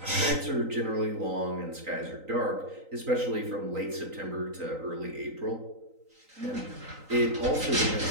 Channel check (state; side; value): late; left; 3.9 ms